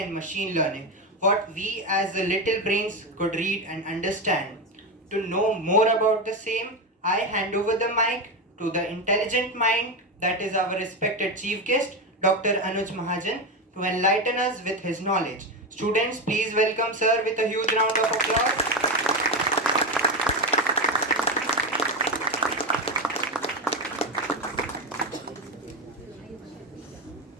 machine learning, what we as the little brains could read and understand. To know more about the same, I hand over the mic to the intelligent mind that is our respected chief guest, Dr. Anuj Mahajan, to enlighten us with his knowledge. Students, please welcome sir with a huge round of applause.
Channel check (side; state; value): both; normal; correlation 0.14